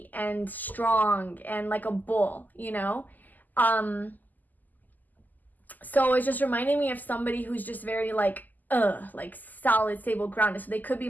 and strong and like a bull, you know? So it's just reminding me of somebody who's just very like solid, stable, grounded. So they could be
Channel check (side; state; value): right; late; 0.084 ms